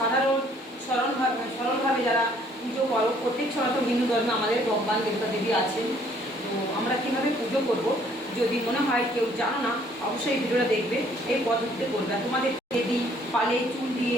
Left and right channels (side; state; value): both; normal; correlation 0.62